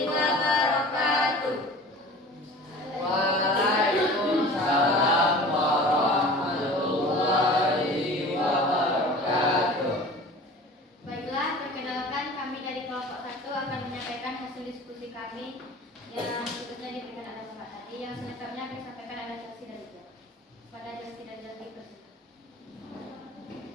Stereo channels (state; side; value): normal; both; correlation 0.41